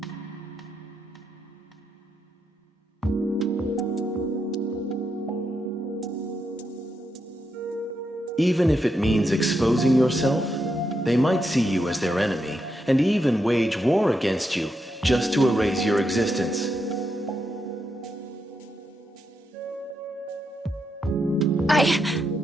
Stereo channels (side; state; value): both; normal; correlation 0.83